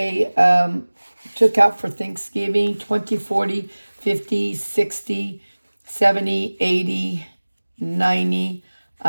took out for Thanksgiving 20, 40, 50, 60, 70, 80, 90,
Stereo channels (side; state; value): both; inverted; correlation -1.00